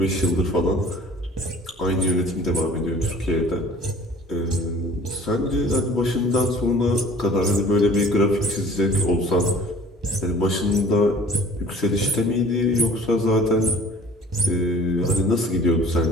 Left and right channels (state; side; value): normal; both; correlation 0.49